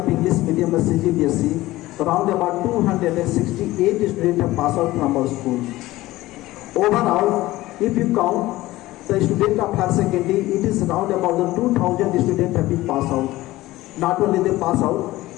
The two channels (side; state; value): right; quieter; 17.5 dB